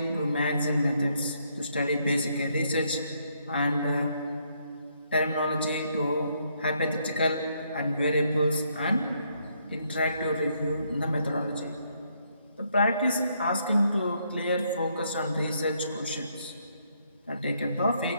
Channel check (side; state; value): both; inverted; correlation -0.73